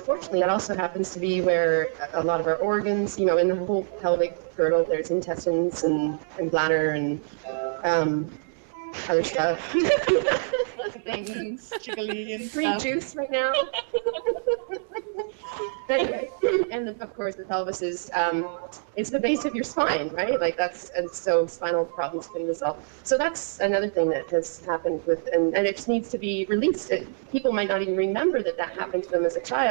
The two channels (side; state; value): left; silent; digital silence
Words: that also happens to be where a lot of our organs, in the whole pelvic girdle, there's intestines and bladder and other stuff. Things, jiggly and Free stuff. juice right now. Anyway, and of course the pelvis is it's the base of your spine, right? And so spinal problems can result. So that's another thing that has happened and it just needs to be released. People might not even remember that happened to them as a